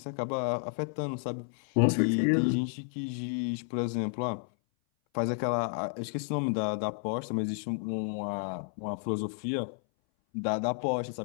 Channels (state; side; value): silent; right; 57 dB below the other